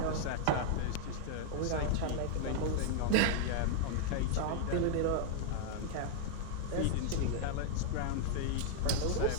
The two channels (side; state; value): both; different; correlation -0.01